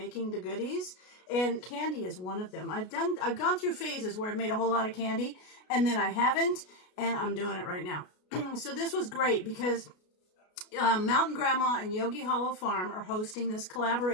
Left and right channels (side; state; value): right; late; 33 ms